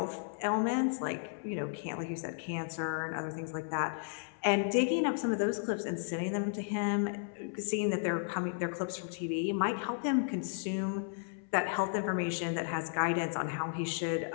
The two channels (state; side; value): silent; right; 55 dB below the other